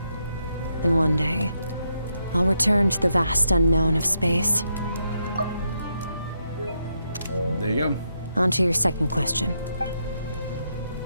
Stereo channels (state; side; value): inverted; both; correlation -0.81